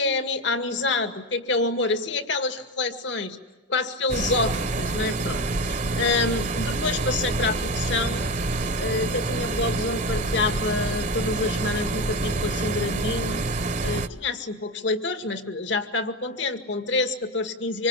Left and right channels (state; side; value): normal; both; correlation 0.19